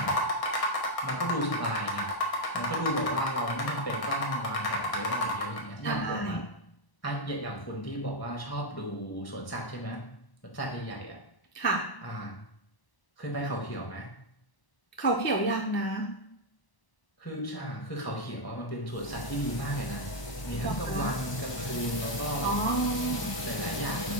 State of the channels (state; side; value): late; right; 1.0 ms